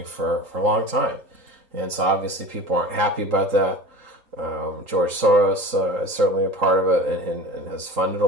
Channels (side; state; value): left; late; 3.8 ms